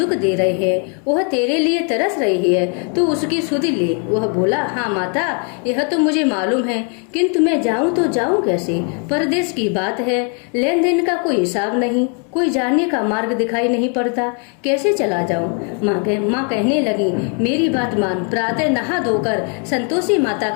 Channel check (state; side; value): quieter; right; 39.8 dB